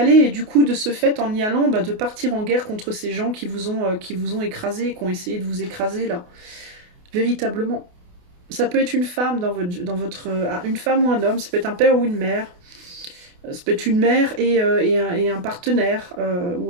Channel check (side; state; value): left; late; 28 ms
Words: et du coup, de ce fait, en y allant, de partir en guerre contre ces gens qui vous ont écrasé, qui ont essayé de vous écraser, là. Véritablement. Ça peut être une femme une femme ou un homme, ça peut être un père ou une mère. Ça peut être une mère et un partenaire,